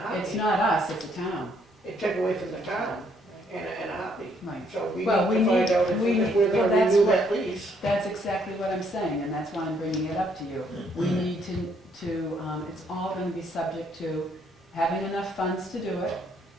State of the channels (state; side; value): normal; both; correlation 0.69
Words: heartbeat. not us, it's the town. It take away from the town in a heartbeat. Right. So we need Well, to we find need- out if we if we're need- well, gonna that's renew what- that lease. That's exactly what I'm saying, and that's why I'm bringing it up to you. We need it's all gonna be subject to having enough funds to do it,